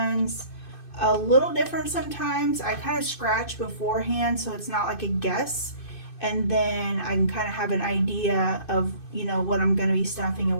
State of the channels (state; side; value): late; right; 2.6 ms